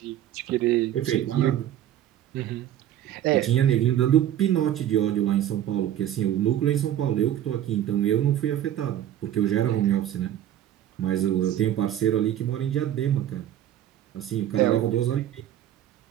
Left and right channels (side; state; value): left; quieter; 11.5 dB